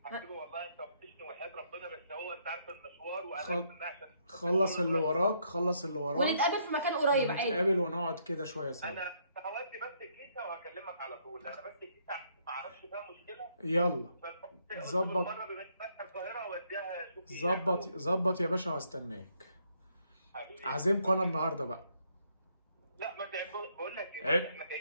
حبيبي والله انت وحشني وحياه ربنا، بس هو انت عارف المشوار وانا عشان خلص اللي وراك، ونتقابل في مكان قريب عادي. نتقابل ونقعد كده شويه سوا. انا هودي بس الكيسه وهكلمك على طول. انا بس الكيسه ما اعرفش فيها مشكله. يلا ظبط. ظبط يا باشا وهستناك. عازمكم انا النهارده بقى. لا ما بقول لك احنا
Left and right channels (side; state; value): both; inverted; correlation -0.71